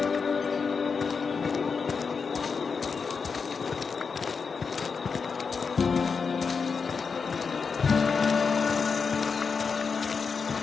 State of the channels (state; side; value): quieter; right; 5.4 dB